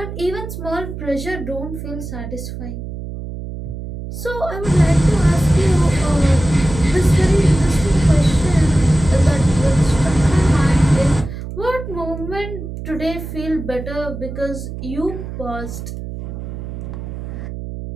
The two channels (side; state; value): right; noise; hum, 9 dB below the sound